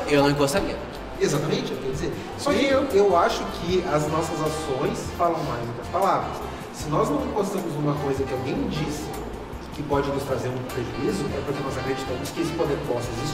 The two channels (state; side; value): identical; both; correlation 1.00